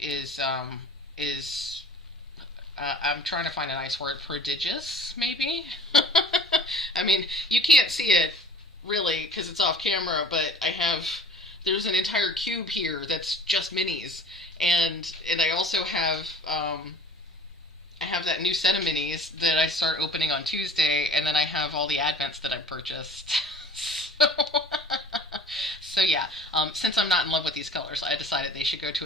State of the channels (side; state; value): both; normal; correlation 0.46